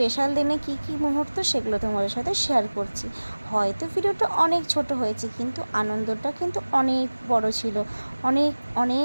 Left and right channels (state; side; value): inverted; both; correlation -1.00